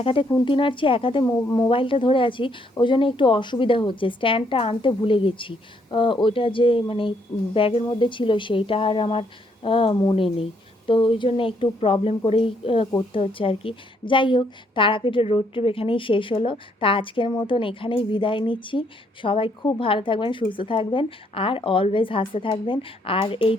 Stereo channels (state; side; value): normal; both; correlation 0.71